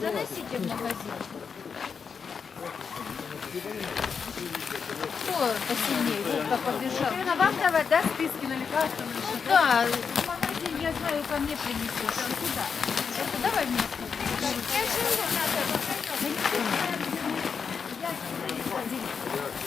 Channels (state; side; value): quieter; right; 6.0 dB